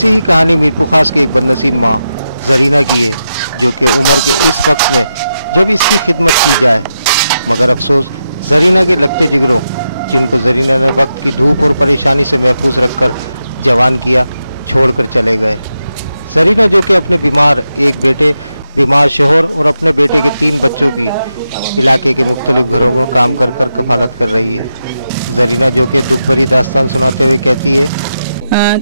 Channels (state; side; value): inverted; both; correlation -0.88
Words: ही कहानी मीरपुर खास की एक बदनसीब माँ जरीना की है, जो कि उम्र के इस वक्त में जब इसकी खिदमत की जाए, मगर अफसोस जरीना के लगते जिगरों, जिनको जरीना ने वक्त की धूप और परेशानी से महफूज रखकर जवान किया, छोड़कर चले गए। जरीना जो कि अपने बीमार एक बेटे, बीमार शोहर और अपने बेटे के 3 बच्चों की इलाके के मुख्तलिफ घरों में काम कर कर कफालत कर रही है। जरीना जो कि दुख भरी दास्तान सुनाते हुए कहती है,